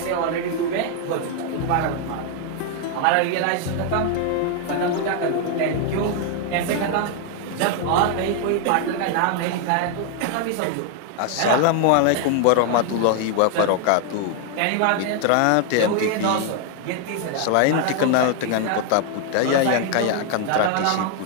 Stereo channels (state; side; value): different; both; correlation 0.00